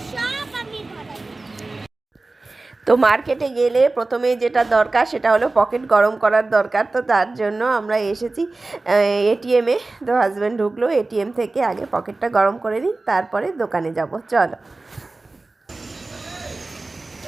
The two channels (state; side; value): quieter; left; 3.3 dB